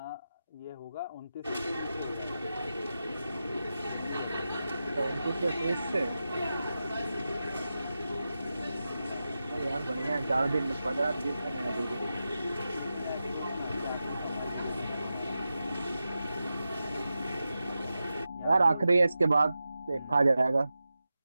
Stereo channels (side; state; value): both; inverted; correlation -0.91